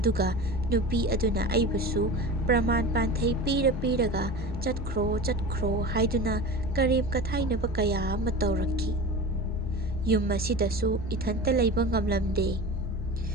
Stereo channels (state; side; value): normal; both; correlation 0.31